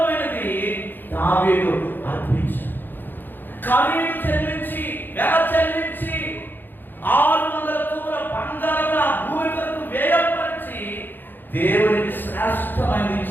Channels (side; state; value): right; late; 0.093 ms